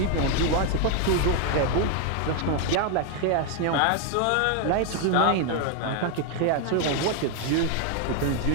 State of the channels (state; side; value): different; both; correlation 0.01